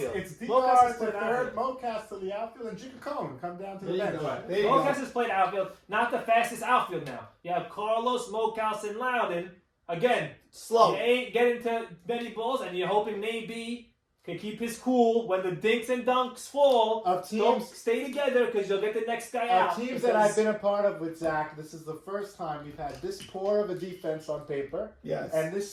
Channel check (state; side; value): identical; both; correlation 1.00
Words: It's Mo Cass has DR to played third, outfield. Mo Cass to the outfield, and Jigga Cohen come down to the There you bench. go. There you Mo go. Cass has played outfield. Not the fastest outfield now. You have Carlos, Mocaus, and Loudon. Again, Slow. you ain't getting to many balls, and you're hoping Naby can keep his cool when the dinks and dunks fall. Of Don't teams- stay together because you'll get the next guy out. Teams that I've been a part of with Zach, this is the first time we've had this poor of a defense on paper Yes. and